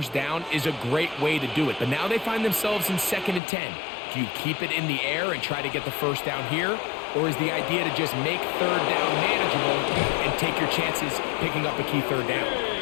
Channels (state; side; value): drops out; right; at 3.4 s